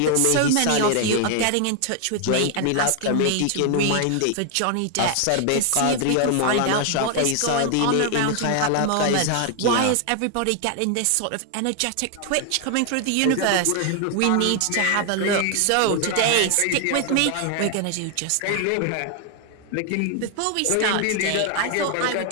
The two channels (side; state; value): both; different; correlation 0.00